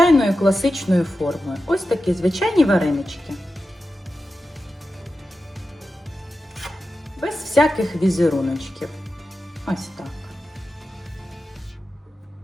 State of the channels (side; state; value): both; normal; correlation 0.92